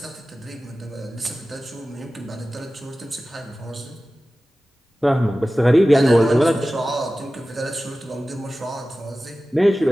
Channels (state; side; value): normal; both; correlation 0.96